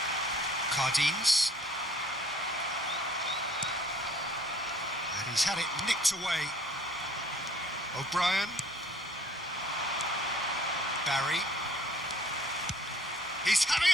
Cardines. And he's had it nicked away. O'Brien. Barry. He's having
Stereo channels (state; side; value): noise; left; hum, 28 dB below the sound